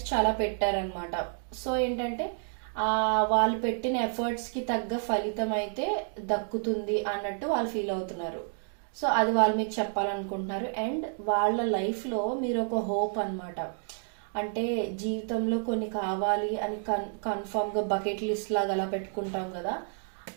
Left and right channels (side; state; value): left; silent; 58 dB below the other